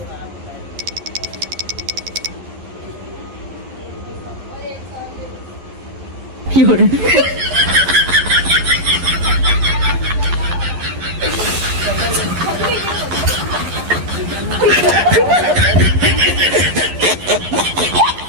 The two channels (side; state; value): left; late; 11 ms